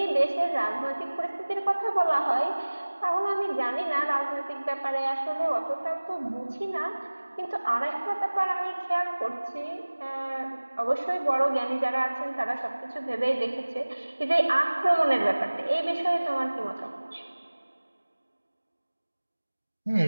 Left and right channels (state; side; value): inverted; both; correlation -1.00